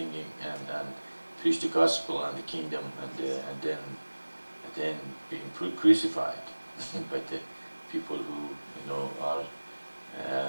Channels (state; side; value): inverted; both; correlation -1.00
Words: and preach the gospel and the kingdom and then being crucified by the people who are